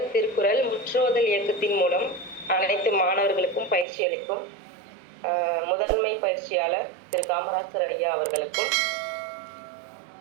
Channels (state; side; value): drops out; left; at 3.9 s